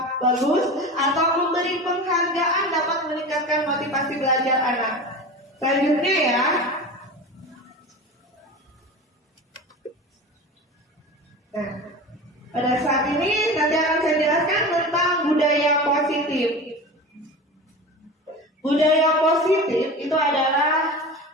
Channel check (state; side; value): normal; both; correlation 0.31